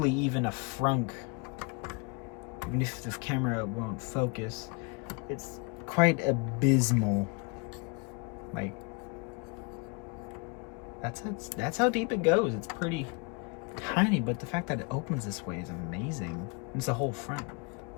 even a frunk. Even if the camera won't focus. It's quite abysmal. Like, that's how deep it goes. It's pretty tiny, but the fact that it opens this way is amazing. It's the whole front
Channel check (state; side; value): quieter; right; 32.1 dB